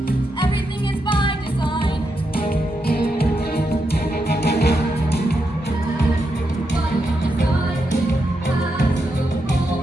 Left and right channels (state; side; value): normal; both; correlation 0.84